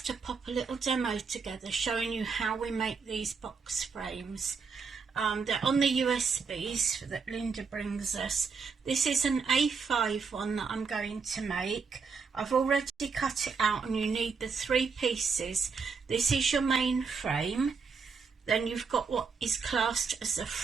to pop a little demo together showing you how we make these box frames. They're on the USBs that Linda brings us. This is an A5 one that I'm going to make. I've already cut it out and you need the 3 pieces. This is your main frame. Then you've got what is classed as the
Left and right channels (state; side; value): quieter; left; 5.3 dB